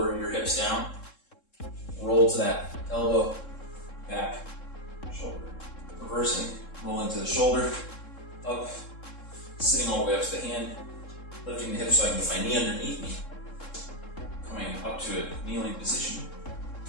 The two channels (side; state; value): right; late; 3.7 ms